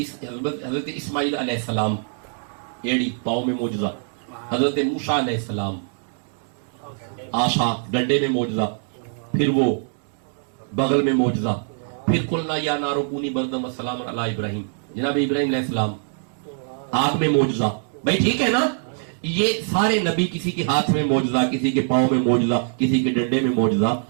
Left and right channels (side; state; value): left; silent; 63 dB below the other